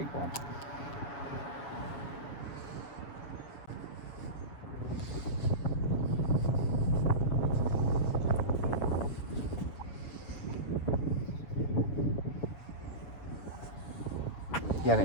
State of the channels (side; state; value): right; late; 7.1 ms